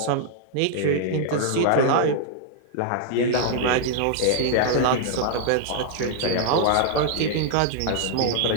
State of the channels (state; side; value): different; both; correlation -0.01